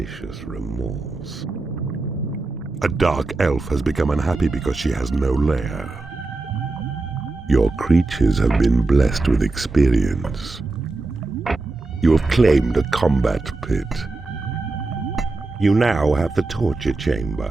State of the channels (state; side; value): quieter; left; 3.3 dB